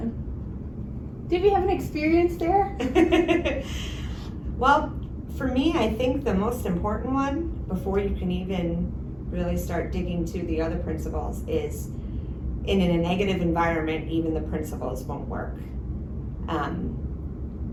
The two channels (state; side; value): identical; both; correlation 1.00